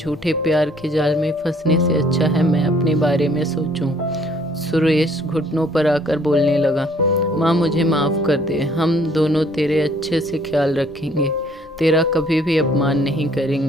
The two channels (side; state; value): both; normal; correlation 0.61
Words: प्यार के जाल में फंसने से अच्छा है मैं अपने बारे में सोचूं। सुरेश घुटनों पर आकर बोलने लगा, माँ मुझे माफ़ कर दे, हम दोनों तेरे अच्छे से ख्याल रखेंगे, तेरा कभी भी अपमान नहीं